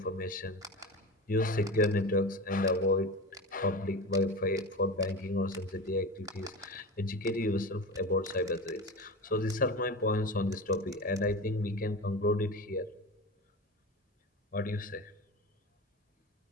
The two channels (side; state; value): both; normal; correlation 0.28